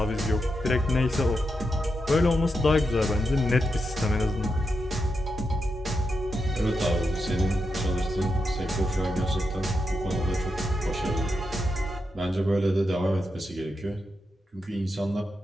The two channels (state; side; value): normal; both; correlation 0.86